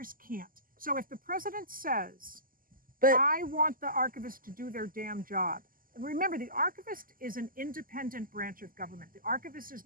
can't. So if the president says, I want the archivist to do their damn job, remember, the archivist is an independent branch of government. The archivist is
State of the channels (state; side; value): late; left; 0.41 ms